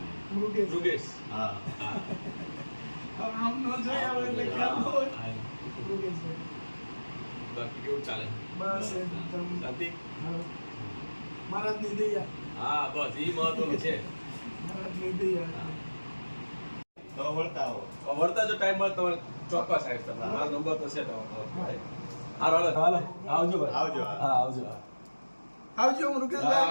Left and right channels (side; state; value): both; inverted; correlation -1.00